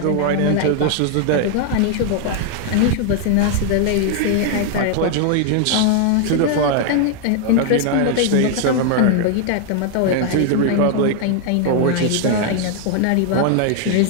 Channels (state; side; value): different; both; correlation 0.00